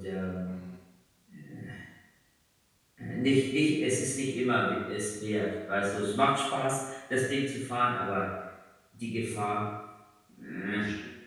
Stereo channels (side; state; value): both; identical; correlation 1.00